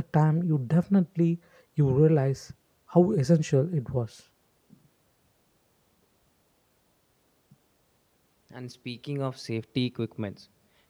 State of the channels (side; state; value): both; identical; correlation 1.00